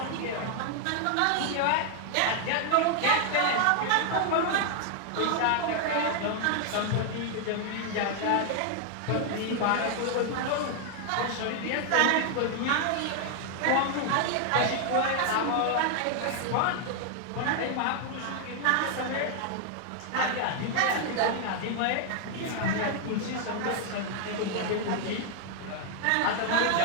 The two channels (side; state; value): both; different; correlation 0.00